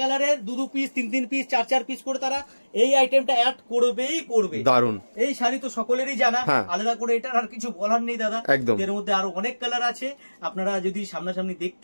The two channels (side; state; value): both; inverted; correlation -1.00